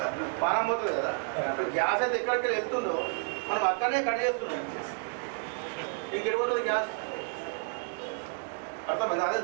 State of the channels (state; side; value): silent; left; 57 dB below the other